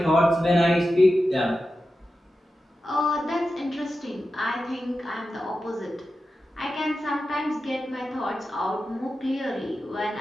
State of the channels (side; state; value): both; normal; correlation 0.92